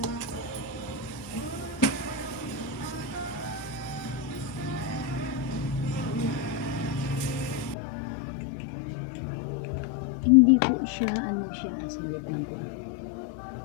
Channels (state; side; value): drops out; right; at 7.8 s